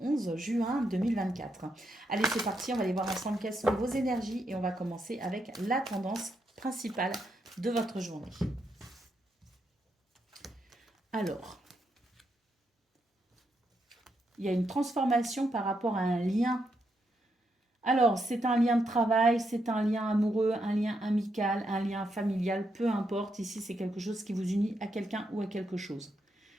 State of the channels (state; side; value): normal; both; correlation 0.80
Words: 11 juin 2024. Allez, c'est parti, on va aller voir ensemble quelles sont vos énergies et on va commencer avec la tendance principale de votre journée. Alors, il y a une transformation par rapport à un lien. Alors, c'est un lien de travail, c'est un lien amoureux, un lien amical, un lien familial, peu importe. Ici, c'est quelque chose qui vous unit à quelqu'un ou à quelque chose.